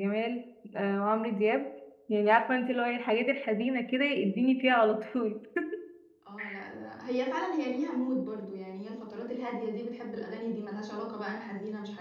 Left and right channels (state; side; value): identical; both; correlation 1.00